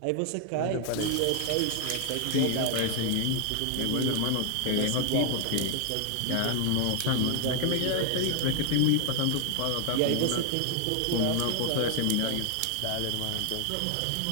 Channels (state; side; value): different; both; correlation 0.00